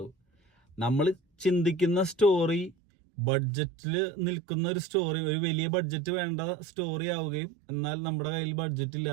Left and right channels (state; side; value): drops out; left; at 2.8 s